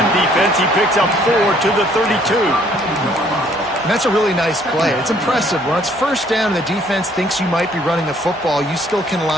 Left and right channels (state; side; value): normal; both; correlation 0.62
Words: defense. He picks up 4 to the 32. And that's a really nice play. It's impressive. When it's first down and the defense thinks you might be running a football, you still can